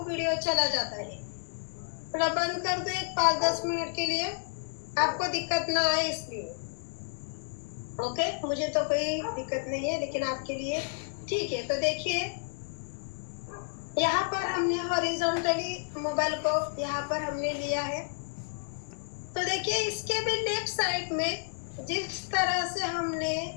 वीडियो चला जाता है। थोड़ा बंद कर दो एक 5-10 मिनट के लिए, आपको दिक्कत ना आए इसलिए। ओके, मुझे तो कोई दिक्कत नहीं है, लेकिन आपके लिए ठीक है। तो देखिए, यहाँ पर हमने हॉरिजॉन्टली मोबाइल को यहाँ पर हमने लिया है। तो देखिए, इसके भी लेफ्ट साइड में जिस तरह से हमने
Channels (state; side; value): silent; right; digital silence